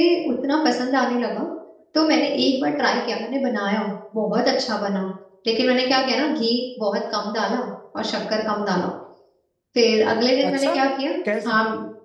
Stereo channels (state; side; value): identical; both; correlation 1.00